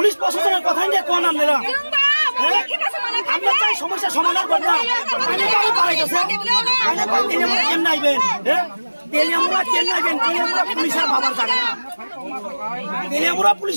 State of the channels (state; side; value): inverted; both; correlation -1.00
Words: প্রশাসনের কথাই নিয়ে কোন আপনারা আমরা চাই সমস্যা সমাধান করতাম তাইনে কই পারে গেছে তাইনে কই তেলেমুরা কেমনে আইবেন হ্যাঁ তেলেমুরা কেমনে আইবেন তেলেমুরা পুলিশের বাবার জায়গা না তেলেমুরা